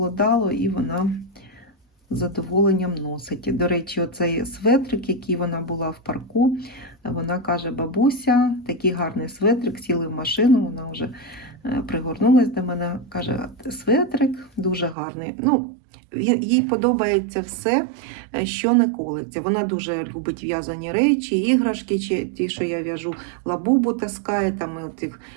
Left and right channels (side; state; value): left; drops out; at 15.0 s